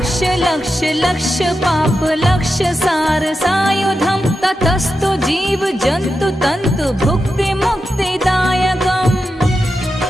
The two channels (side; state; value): both; normal; correlation 0.89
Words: लक्ष लक्ष पाप लक्ष सार सायुधम ततस्तु जीव जंतु तंतु भुक्ति मुक्तिदायकम्